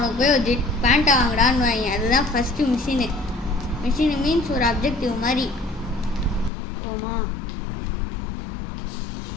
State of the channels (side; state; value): right; drops out; at 6.5 s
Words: போய் ஒரு ஜெட் பேண்ட்டை வாங்கடான்னு வாங்க. அதுதான் ஃபஸ்ட்டு மிஷினு. மிஷினு மீன்ஸ் ஒரு அப்ஜெக்டிவ் மாதிரி. ஓமா